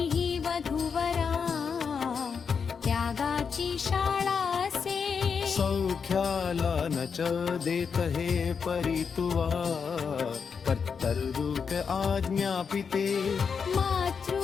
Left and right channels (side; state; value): right; quieter; 6.1 dB